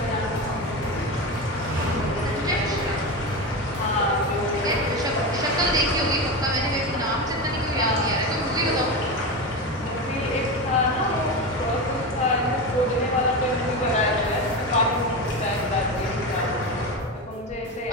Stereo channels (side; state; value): both; normal; correlation 0.20